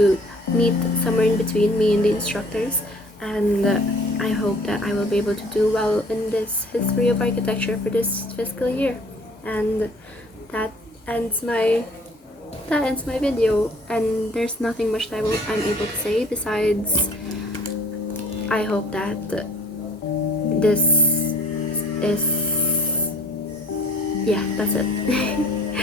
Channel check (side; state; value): both; normal; correlation 0.53